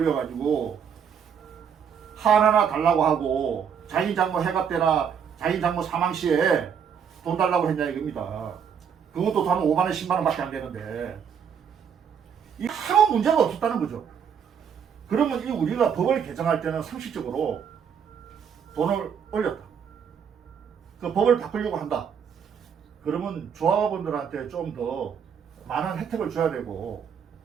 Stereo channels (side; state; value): left; quieter; 7.5 dB